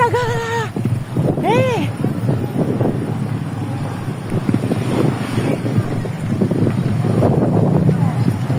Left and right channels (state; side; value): identical; both; correlation 1.00